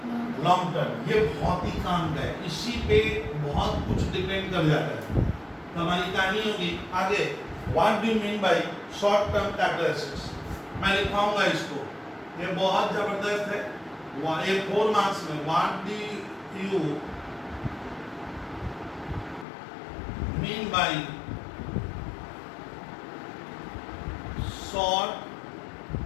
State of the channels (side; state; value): right; drops out; at 19.5 s